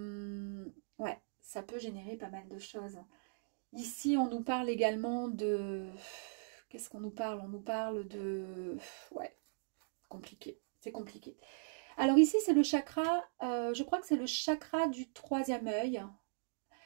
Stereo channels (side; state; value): left; silent; digital silence